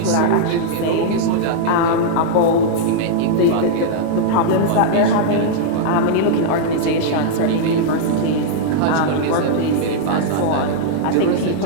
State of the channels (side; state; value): both; different; correlation -0.02